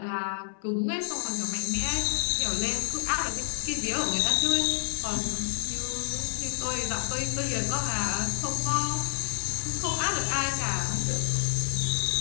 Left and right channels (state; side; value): silent; right; digital silence